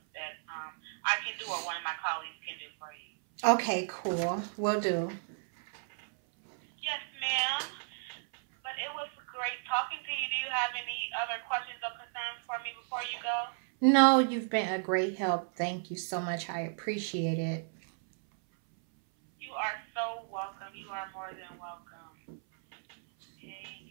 that I can do or one of my colleagues can do for you. Okay, cool. Will do. Yes, ma'am. But it was great talking to you. Do you have any other questions or concerns for me before you go? No, you've been a great help. Thank you so much. I appreciate it. You are so welcome. You are more than welcome. Okay.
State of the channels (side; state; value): left; silent; 55 dB below the other